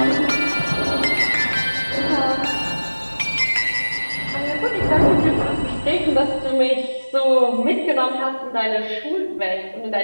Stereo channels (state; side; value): inverted; both; correlation -1.00